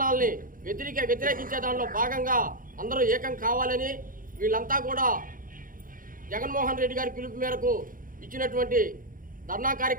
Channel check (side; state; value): left; late; 0.40 ms